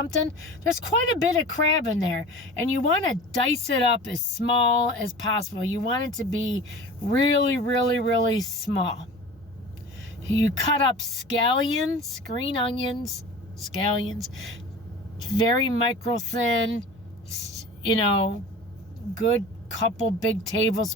There's quite a bit of crab in there, and you want to dice it up as small as possible. You want it to be really, really, really small. You cut up scallions, green onions, scallions, very micro thin, good couple big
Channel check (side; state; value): both; normal; correlation 0.37